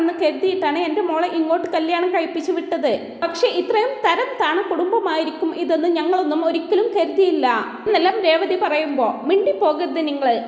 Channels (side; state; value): both; identical; correlation 1.00